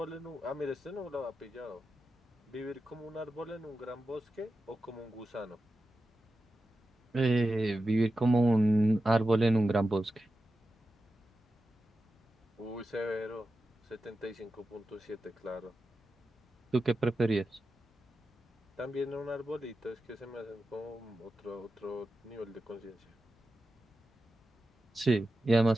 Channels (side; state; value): both; normal; correlation 0.91